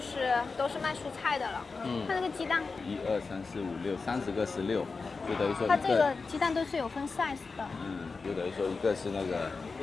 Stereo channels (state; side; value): quieter; right; 4.3 dB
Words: 都是卖蔬菜的了。看那个鸡蛋。1、2、3、4、5、6，30个16，就等于说它这个鸡蛋都是有分 size 的。就等于说一个是那个